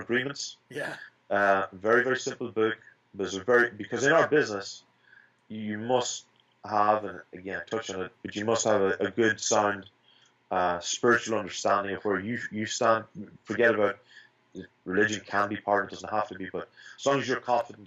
Agreements. Yeah. Very, very simple book, because in our business, you must have, and again, touch on it, but you must have a good, sound, spiritual understanding of where you stand. Forget about religion, can be part, it doesn't have to be, but as long as you're confident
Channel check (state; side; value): identical; both; correlation 1.00